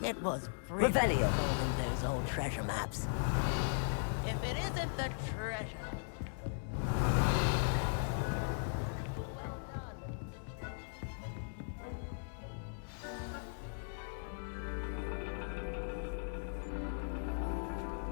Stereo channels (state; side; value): silent; right; 52 dB below the other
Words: It was Revelio. those old treasure maps. If it isn't the treasure...